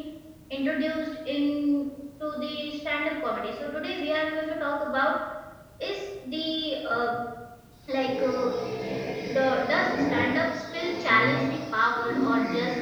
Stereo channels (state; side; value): identical; both; correlation 1.00